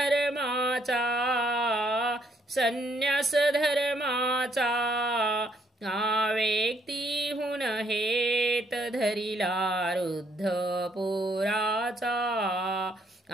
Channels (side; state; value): both; normal; correlation 0.70